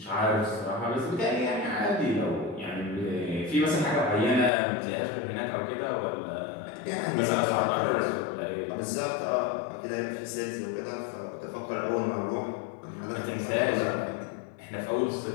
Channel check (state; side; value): drops out; right; at 4.5 s